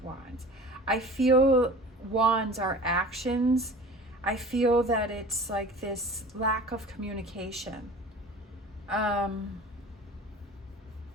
Wands. I feel wands are actions. I feel that it's like this lack of communication.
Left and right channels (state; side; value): normal; both; correlation 0.41